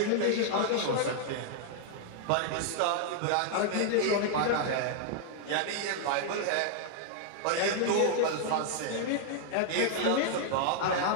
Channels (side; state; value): both; different; correlation 0.00